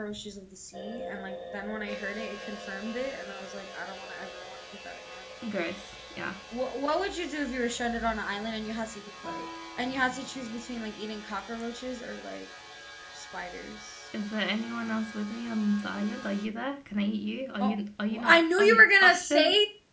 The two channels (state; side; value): identical; both; correlation 1.00